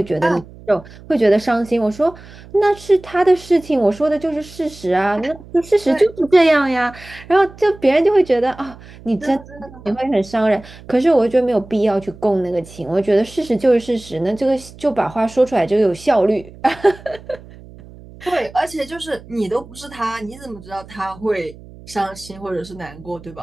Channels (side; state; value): right; noise; hum, 20 dB below the sound